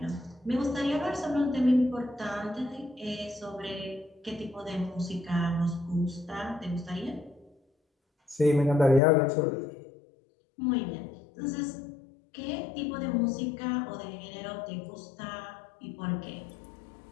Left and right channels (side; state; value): right; drops out; at 9.0 s